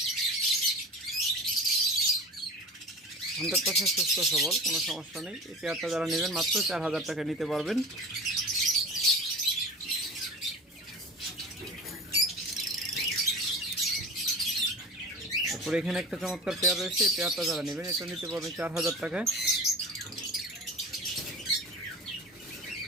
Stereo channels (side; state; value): both; normal; correlation 0.34